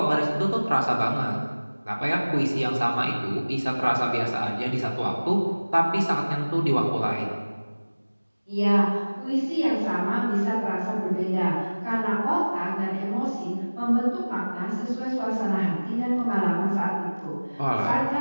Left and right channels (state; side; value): inverted; both; correlation -1.00